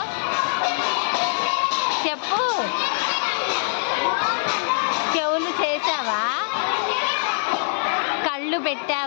చెప్పు. చెవులు చేసావా? కళ్ళు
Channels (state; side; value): silent; right; 63 dB below the other